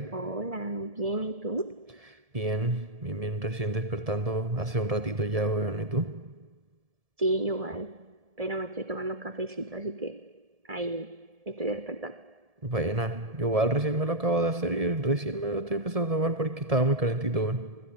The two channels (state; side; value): late; left; 1.7 ms